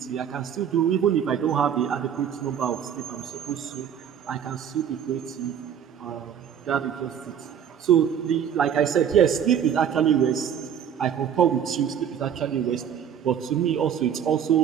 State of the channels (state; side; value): quieter; left; 8.6 dB